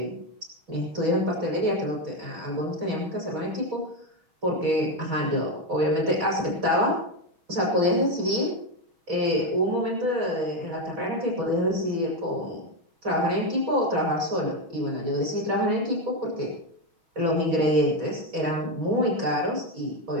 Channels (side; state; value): left; late; 6.3 ms